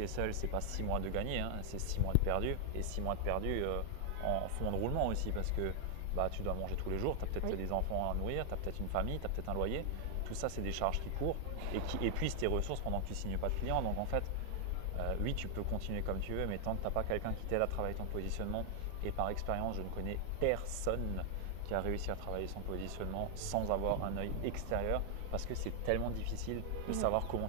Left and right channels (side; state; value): both; different; correlation 0.00